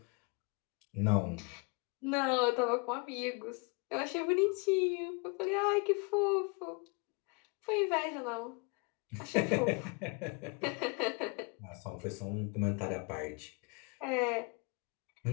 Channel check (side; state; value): right; quieter; 32.1 dB